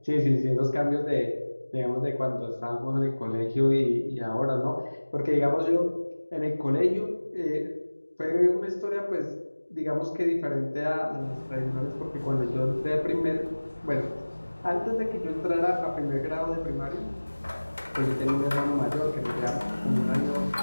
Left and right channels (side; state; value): both; inverted; correlation -1.00